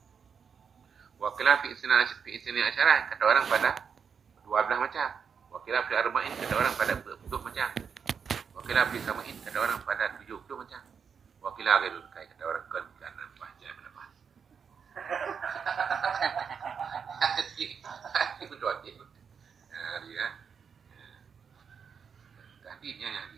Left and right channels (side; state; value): left; quieter; 6.6 dB